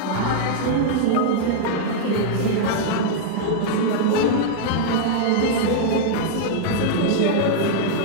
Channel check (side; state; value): both; different; correlation -0.01